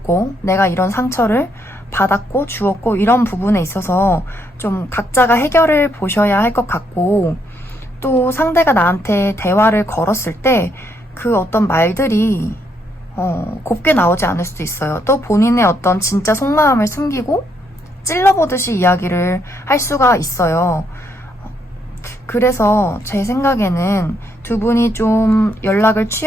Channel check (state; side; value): normal; both; correlation 0.75